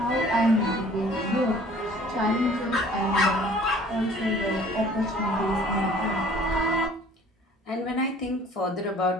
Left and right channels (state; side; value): normal; both; correlation 0.52